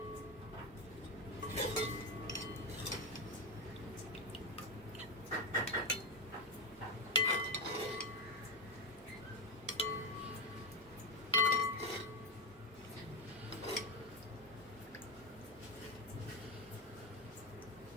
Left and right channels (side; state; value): both; normal; correlation 0.12